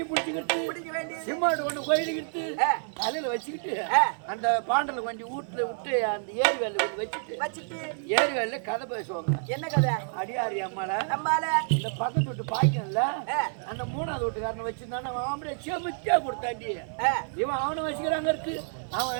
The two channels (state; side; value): silent; left; 59 dB below the other